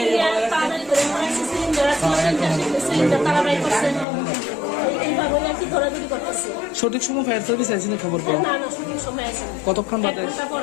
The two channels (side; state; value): right; drops out; at 4.0 s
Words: তাড়াতাড়ি করে মনে হচ্ছে সিলিন্ডার আছে, সিলিন্ডার তাড়াতাড়ি করছে, এইভাবে আর কি ধরাধরি করতেছে। সঠিক সময় ফায়ার সার্ভিস আইসিনি খবর পাও? না না, সঠিক সময় আছে না। কতক্ষণ বাদে? 1 ঘন্টা পর